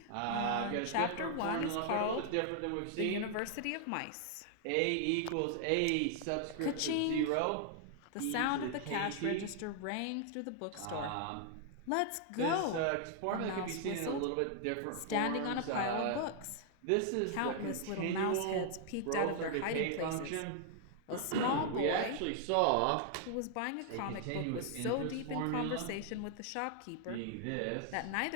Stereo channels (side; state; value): both; different; correlation 0.00